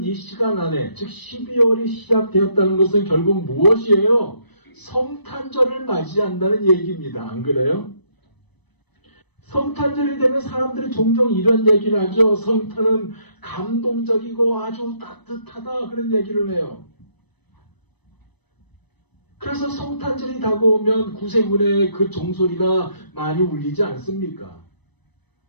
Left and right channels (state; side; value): late; right; 1.0 ms